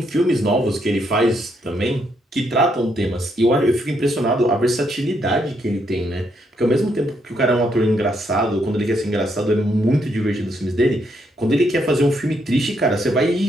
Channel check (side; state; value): both; normal; correlation 0.75